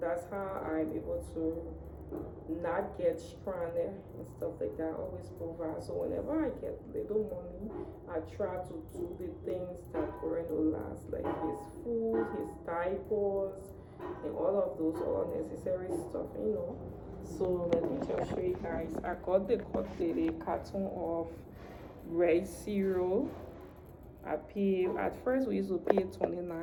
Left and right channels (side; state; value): both; identical; correlation 1.00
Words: how I'm able to not get stranded and stuff like that. I always provide. So whenever I get little money, I try to do the things that going to last, like his food, his diapers, and all of those all necessary stuff, you know. So let me just show you guys. I got the carton of rice cereal. I pay, at first we used to pay